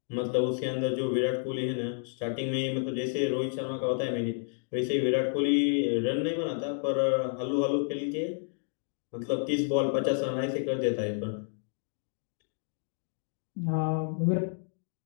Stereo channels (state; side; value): silent; right; 58 dB below the other